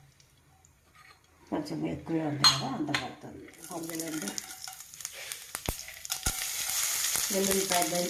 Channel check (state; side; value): identical; both; correlation 1.00